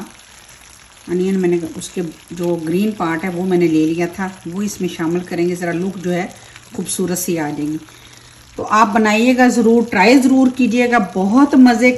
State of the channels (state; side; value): identical; both; correlation 1.00